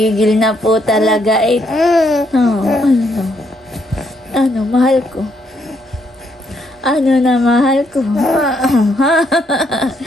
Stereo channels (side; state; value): both; normal; correlation 0.73